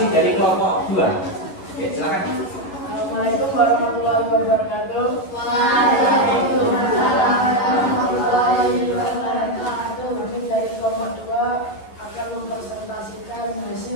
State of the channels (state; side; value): late; right; 11 ms